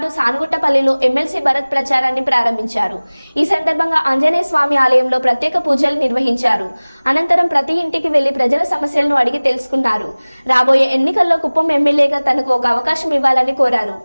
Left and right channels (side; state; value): both; inverted; correlation -1.00